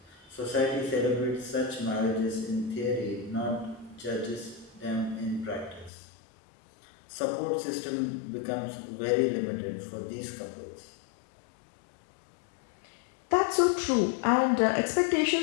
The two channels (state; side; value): drops out; right; at 5.9 s